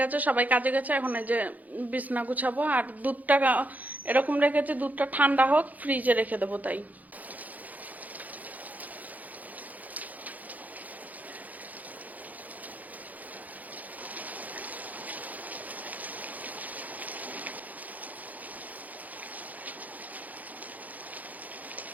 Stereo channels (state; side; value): late; left; 0.079 ms